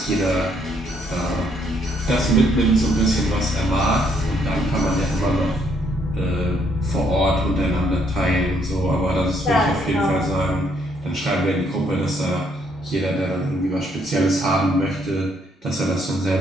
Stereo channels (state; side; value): normal; both; correlation 0.70